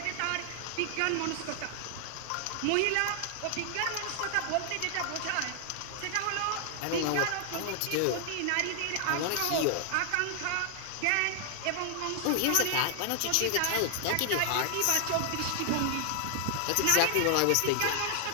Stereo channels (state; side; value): different; both; correlation 0.00